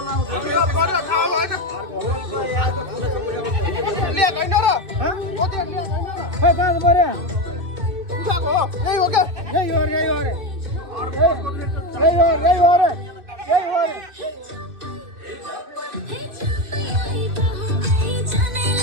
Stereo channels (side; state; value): left; late; 2.6 ms